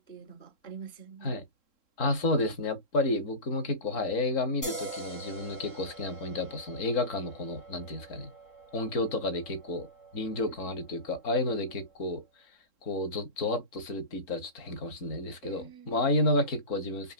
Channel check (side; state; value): right; late; 3.7 ms